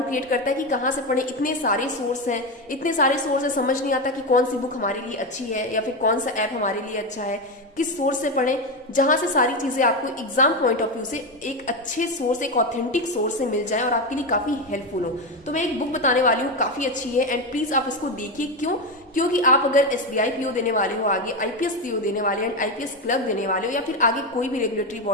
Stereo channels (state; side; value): normal; both; correlation 0.13